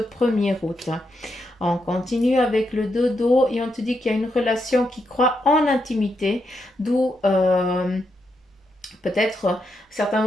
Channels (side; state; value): both; normal; correlation 0.82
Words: août. On continue avec le dodo et on te dit qu'il y a une relation qui croit en intimité, d'où peut-être certains